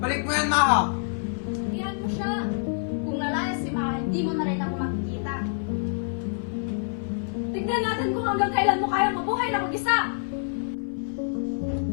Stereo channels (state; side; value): silent; right; 56 dB below the other